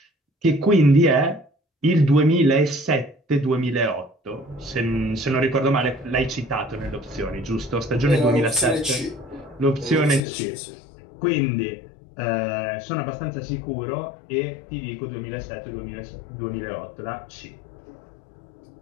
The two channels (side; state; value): right; drops out; at 10.2 s